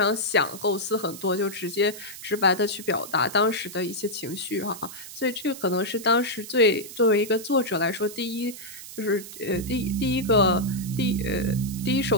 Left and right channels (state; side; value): noise; right; hiss, 13 dB below the sound